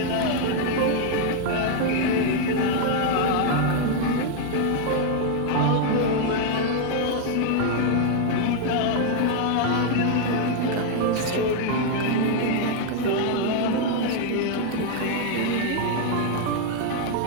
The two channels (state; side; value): different; both; correlation 0.00